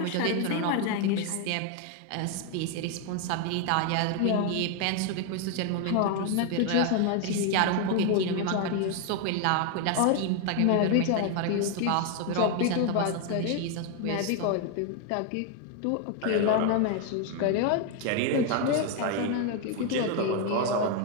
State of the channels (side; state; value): both; different; correlation 0.01